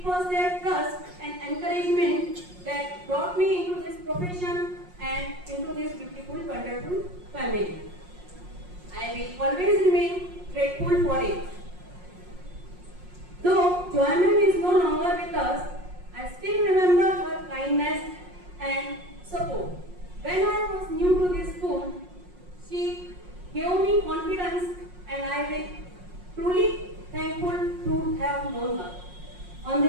was their trust and encouragement that brought me into this profession and into this beautiful, wonderful family. I will always remain grateful for it. Though Joy ma'am is no longer with us, I still remember her kindness and support. When I was new to this school, she gave me confidence and I will truly thankful to have known her. On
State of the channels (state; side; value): late; left; 5.6 ms